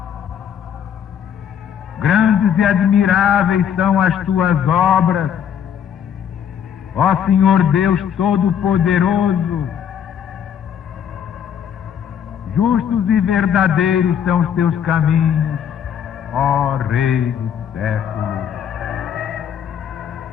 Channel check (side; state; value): right; quieter; 8.6 dB